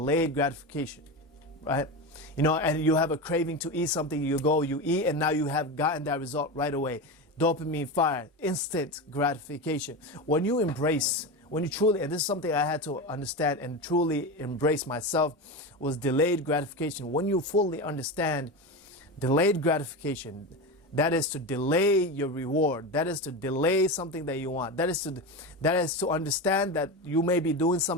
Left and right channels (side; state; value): both; normal; correlation 0.21